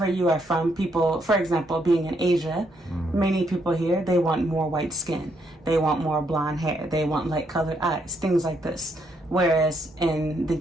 you are from, people, for example, being in Asia, many people here, they want more white skin. They want more blonde hair. They want light colored eyes, things like this. Whereas in the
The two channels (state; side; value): normal; both; correlation 0.75